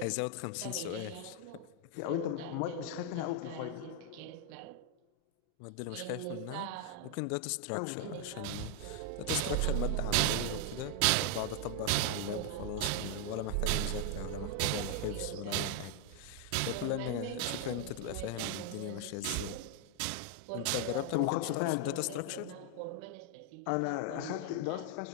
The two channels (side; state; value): both; different; correlation 0.00